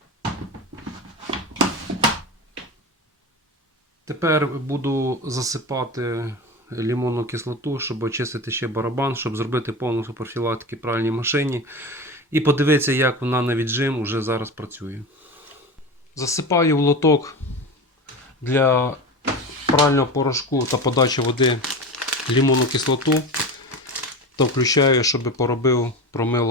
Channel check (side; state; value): both; normal; correlation 0.27